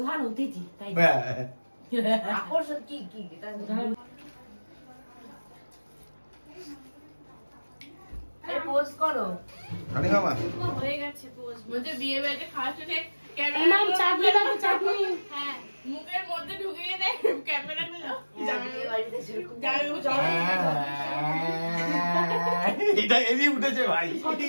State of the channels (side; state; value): both; inverted; correlation -1.00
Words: অতিথি, তাই আকর্ষণ কি কি পোস্ট করো। রানী মামা হয়ে গেছে পোজ। বলতে বিয়ে বাড়িতে খাওয়ার সাথে এমাম চাটনি দাও, চাটনি। হ্যাঁ, মুখের মধ্যে ঢুকিয়ে দেয় ক্যামেরা গুলো। এটা এমনি উঠেছে ভাই,